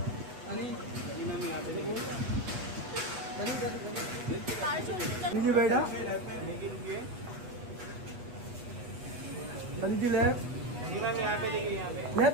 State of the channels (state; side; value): late; left; 8.2 ms